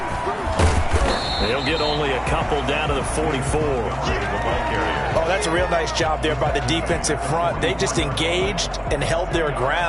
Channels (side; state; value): both; identical; correlation 1.00